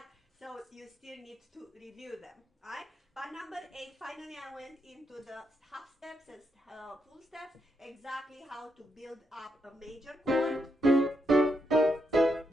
so you still need to review them, right? Part number 8, finally I went into the half steps and full steps, exactly how to build up a major chord,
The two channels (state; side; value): normal; both; correlation 0.81